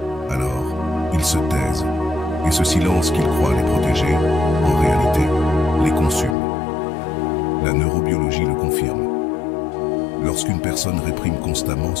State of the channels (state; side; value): drops out; right; at 6.4 s